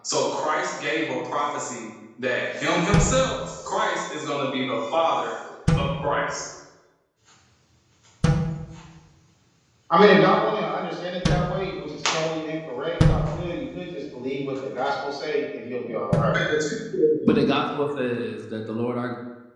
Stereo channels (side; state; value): both; identical; correlation 1.00